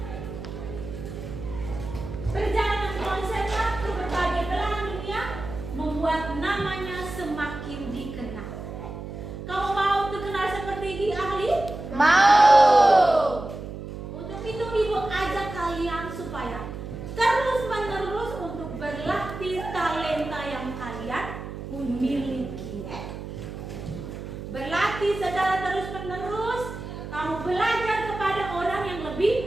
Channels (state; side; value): noise; right; hum, 9 dB below the sound